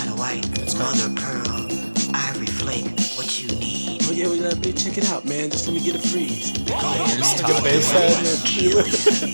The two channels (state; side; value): inverted; both; correlation -1.00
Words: white, mother of pearl, ivory flake, what you need. Oh yeah, check it out, man. Just let me get a freeze. Here's Get a bass head and feel it.